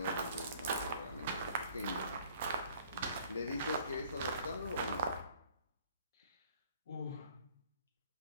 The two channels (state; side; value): inverted; both; correlation -0.55